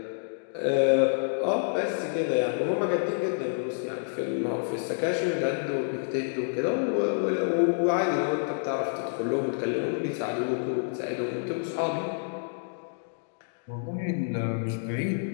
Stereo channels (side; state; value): right; silent; digital silence